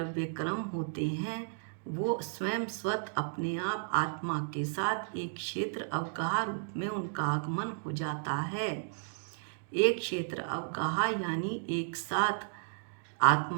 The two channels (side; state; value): left; silent; digital silence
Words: कर्म होते हैं, वो स्वयं स्वतः अपने आप आत्मा के साथ एक क्षेत्र अवगाह रूप में उनका आगमन हो जाता है। एक क्षेत्र अवगाह यानी एक साथ